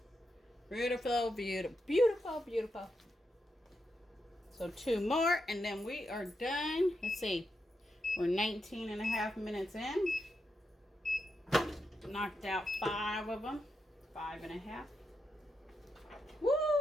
Beautiful, beautiful, beautiful, beautiful. So 2 more and then we are done. Let's see. We're 19 and a half minutes in. Knocked out 5 of them. 5 and a half.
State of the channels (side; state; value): both; normal; correlation 0.85